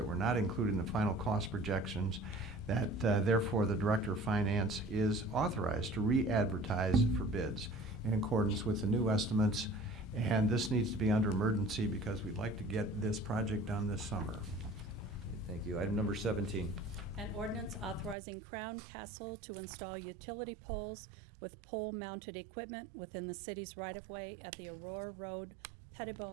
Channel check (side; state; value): left; drops out; at 18.2 s